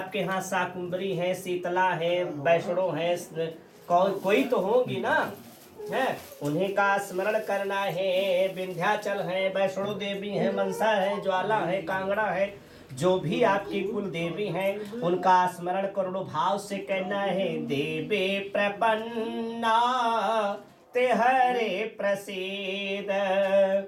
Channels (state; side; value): identical; both; correlation 1.00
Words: यहाँ शाकुंभरी है, शीतला है, वैष्णो है, कोई तो होगी ना, है, उन्हीं का स्मरण करना है। विंध्याचल है, वैष्णो देवी है, मनसा है, ज्वाला है, कांगड़ा है, जो भी आपकी कुल देवी हैं उनका स्मरण करोड़ों भाव से कहना है। देवे प्रपन्ना ते हरे प्रसीद,